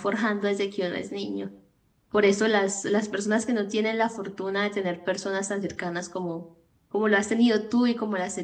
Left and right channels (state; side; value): identical; both; correlation 1.00